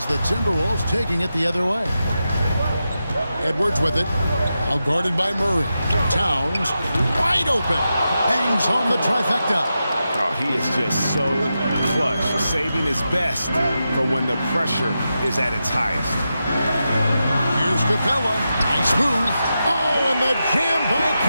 the Timberwolves taking it the other way. Edwards with it. Now guarded by Murray. Towns, wide open. Hangs home the trifecta. Oh, he is just so clutch, saving his best for when the pressure is at its highest. Here's Capella. Nice move. Oh, and the jam by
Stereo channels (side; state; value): both; inverted; correlation -0.89